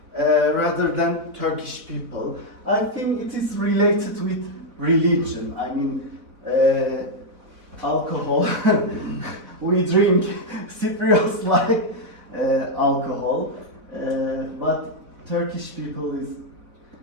rather than Turkish people. I think it is related with religion. I mean, alcohol, we drink, Cypriots like alcohol, but Turkish people is,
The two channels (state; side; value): late; left; 4.2 ms